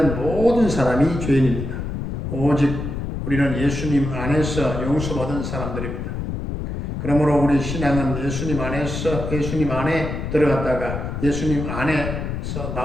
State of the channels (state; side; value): noise; left; rumble, 5 dB below the sound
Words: 모든 사람이 죄인입니다. 오직 우리는 예수님 안에서 용서받은 사람들입니다. 그러므로 우리 신앙은 예수님 안에서 예수님 안에 들어갔다가 예수님 안에서